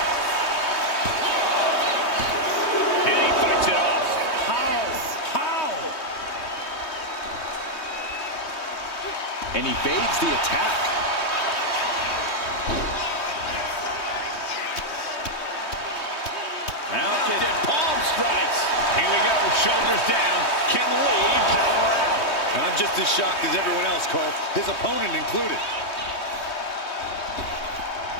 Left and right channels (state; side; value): late; right; 3.2 ms